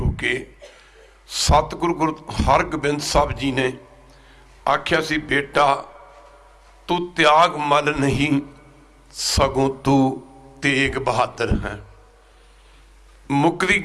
के सतगुरु गुरु हरगोबिंद साहब जी ने आख्या सी, बेटा तू त्यागमल नहीं सगों तू तेग बहादुर है। मुकदी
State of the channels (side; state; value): both; identical; correlation 1.00